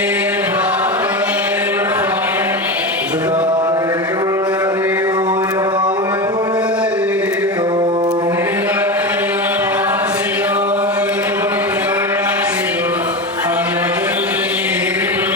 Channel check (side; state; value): both; normal; correlation 0.21